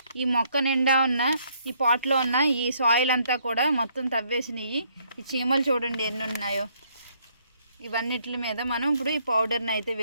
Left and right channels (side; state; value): both; inverted; correlation -0.68